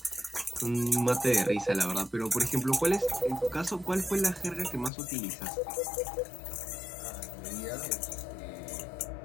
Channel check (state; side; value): drops out; right; at 4.9 s